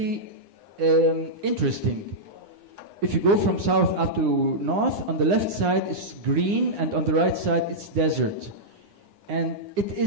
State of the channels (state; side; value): late; left; 9.8 ms